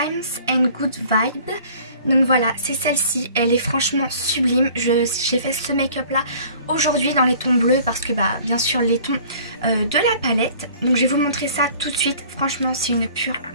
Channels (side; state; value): both; inverted; correlation -0.50